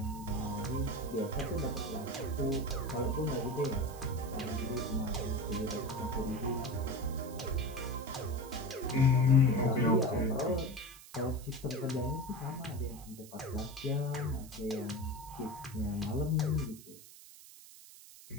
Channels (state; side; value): noise; right; hiss, 18 dB below the sound